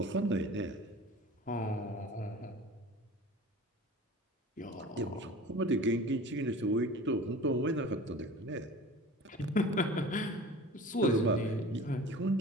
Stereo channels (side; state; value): both; normal; correlation 0.40